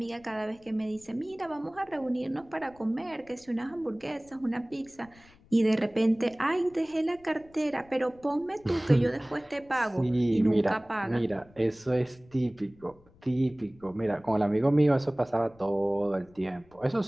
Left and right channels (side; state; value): left; noise; rumble, 27 dB below the sound